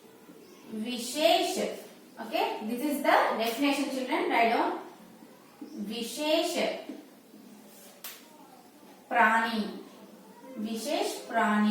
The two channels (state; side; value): identical; both; correlation 1.00